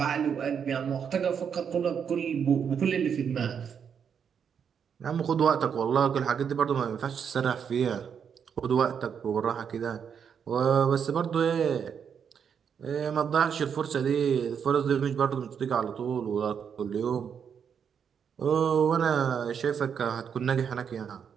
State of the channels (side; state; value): left; quieter; 7.4 dB